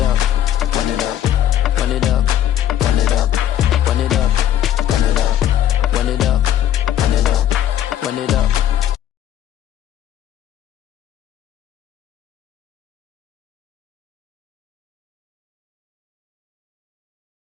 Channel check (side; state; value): right; quieter; 11.2 dB